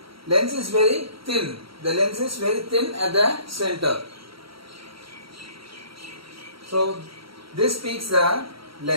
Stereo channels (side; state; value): left; late; 0.75 ms